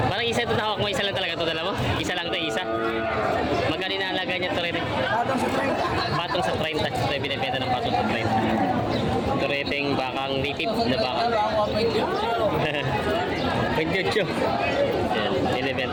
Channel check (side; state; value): both; identical; correlation 1.00